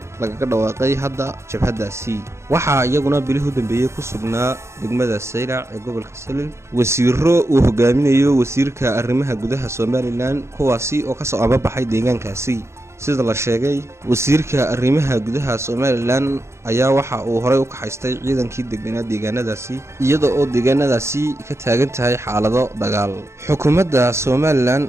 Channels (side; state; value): left; late; 0.13 ms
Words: laga dhawaaqay hadda jabhadaasi. waxaa iyaguna bilihii u dambeeyay ku sugnaa degmada Saylac ee gobolka Salel wasiiro uu hogaaminayo wasiirka arrimaha gudaha Somaliland kuwaasi oo ka soo ababaxay deegaankaasi. sida la sheegay wasiirka arrimaha gudaha Somaliland ayaa waxa uu horay u ka haystay ciidankii deganaa deegaanadaasi iyadoo oo deegaanadaasi ka taagan tahay xaalado dagaal. xukuumadda Somaliland